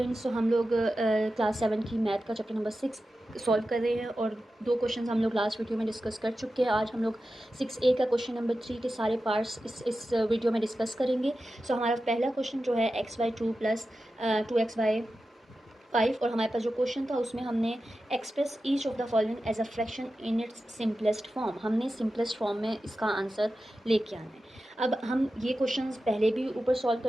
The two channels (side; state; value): both; normal; correlation 0.92